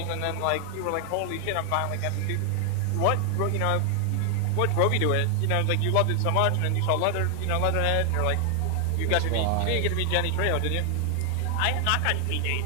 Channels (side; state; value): both; different; correlation 0.00